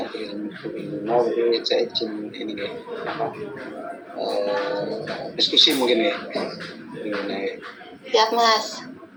Bu Lina, jadi saya izin ini ya, diskusi mungkin ya. Siap, Mas.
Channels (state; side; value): identical; both; correlation 1.00